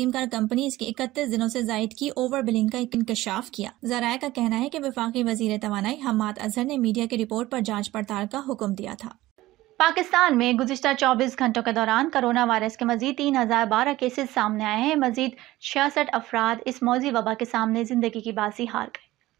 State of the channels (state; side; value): quieter; left; 17.1 dB